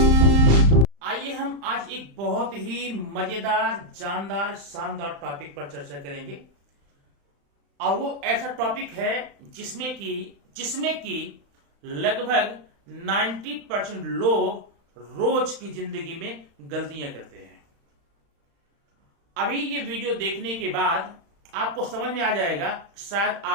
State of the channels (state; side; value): late; left; 35 ms